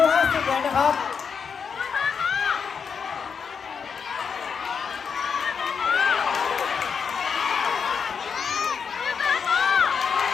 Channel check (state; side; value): quieter; right; 6.3 dB